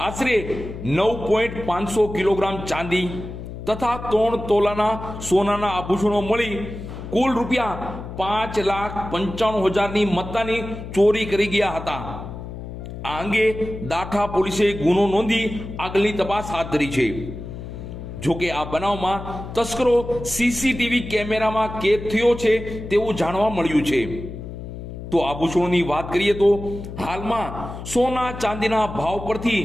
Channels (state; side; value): noise; left; hum, 10 dB below the sound